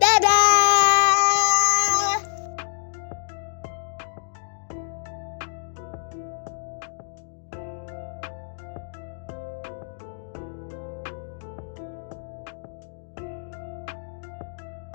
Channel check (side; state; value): right; silent; digital silence